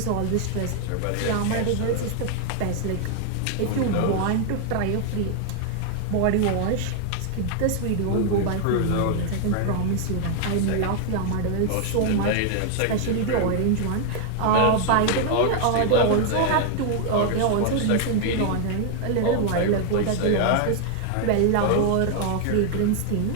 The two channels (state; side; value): different; both; correlation 0.00